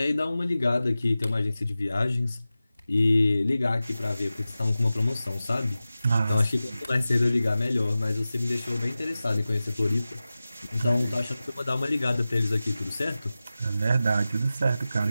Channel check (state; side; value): inverted; both; correlation -0.95